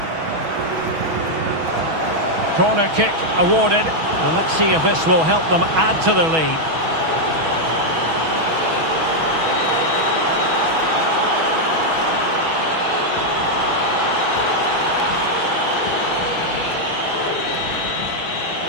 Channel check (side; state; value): left; late; 6.2 ms